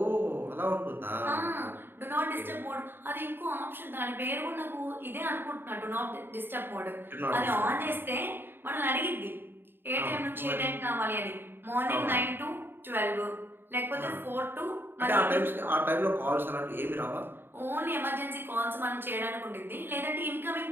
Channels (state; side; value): late; left; 0.10 ms